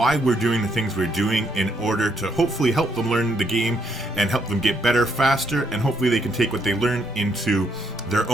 we're doing the things we're doing in order to hopefully help them learn the game and help them get better faster, and hopefully they can take what they learn into their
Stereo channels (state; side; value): normal; both; correlation 0.74